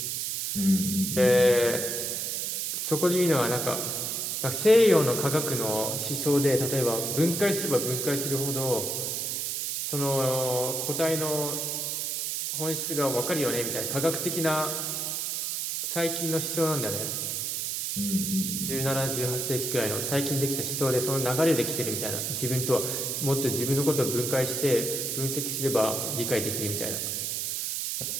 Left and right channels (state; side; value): noise; right; hiss, 1 dB below the sound